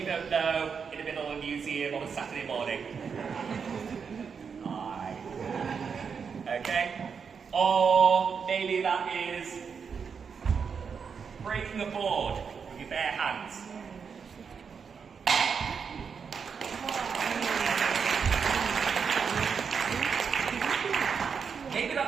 don't know in the middle of a museum on a Saturday morning. Hi. Okay? Or maybe that is breaking a board with your bare hands. Maybe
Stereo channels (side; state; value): left; quieter; 6.2 dB